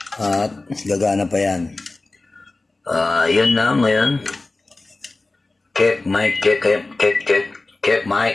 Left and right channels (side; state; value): right; quieter; 3.2 dB